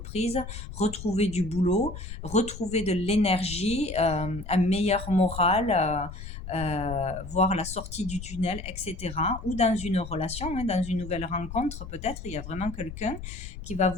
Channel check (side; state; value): left; noise; rumble, 10 dB below the sound